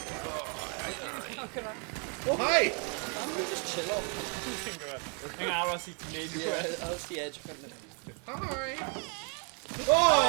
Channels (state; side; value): quieter; left; 37.8 dB